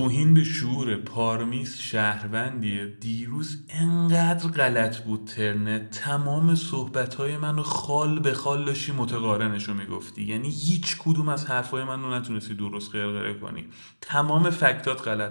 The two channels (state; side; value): inverted; both; correlation -1.00